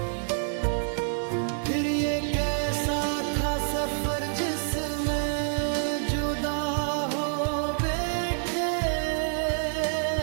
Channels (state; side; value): silent; left; digital silence